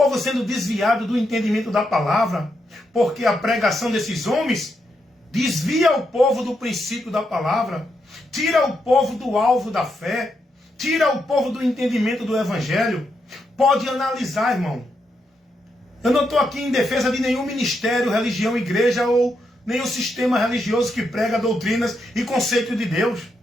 sendo desviado do entendimento da palavra, porque a pregação desses homens desvia o povo do princípio da palavra, tira o povo do alvo da fé, tira o povo do entendimento do evangelho. Pode analisar, irmão. Eu não estou aqui em defesa de nenhum ministério, religião, igreja ou nenhum sistema religioso que prega doutrinas e conceitos de Deus.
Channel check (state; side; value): normal; both; correlation 0.82